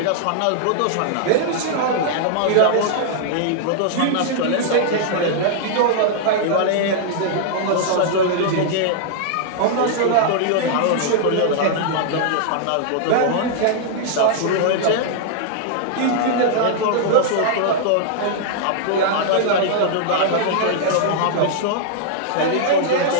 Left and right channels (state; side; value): different; both; correlation -0.01